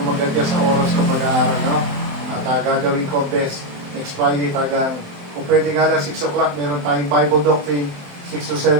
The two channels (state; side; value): late; left; 28 ms